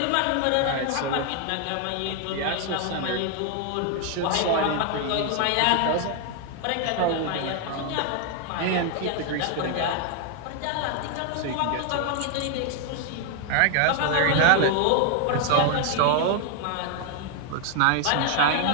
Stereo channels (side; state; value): both; different; correlation 0.00